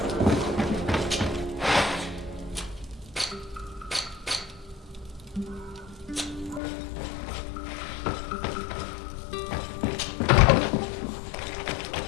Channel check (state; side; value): drops out; right; at 6.6 s